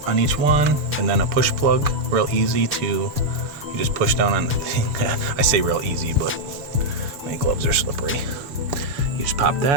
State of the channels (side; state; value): left; late; 7.0 ms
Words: on each one and then a push plug, real easy to, you just push down on the thing. I say real easy, but my gloves are slippery. You just pop